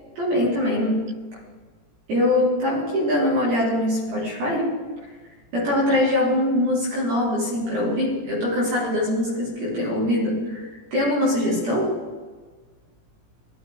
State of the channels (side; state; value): left; late; 18 ms